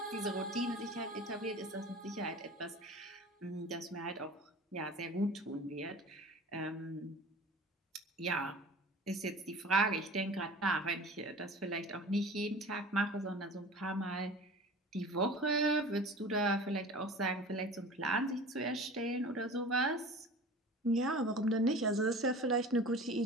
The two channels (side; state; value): both; normal; correlation 0.40